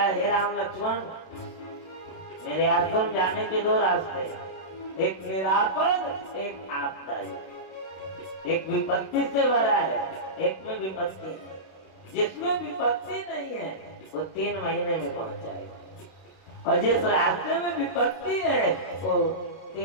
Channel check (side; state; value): right; late; 32 ms